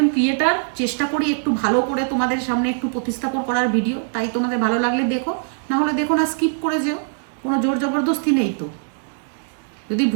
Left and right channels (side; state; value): left; silent; digital silence